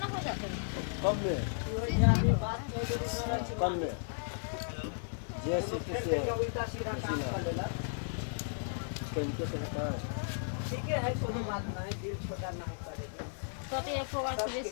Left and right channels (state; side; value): silent; right; digital silence